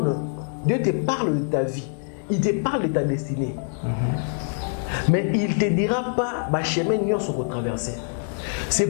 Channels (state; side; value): silent; right; 62 dB below the other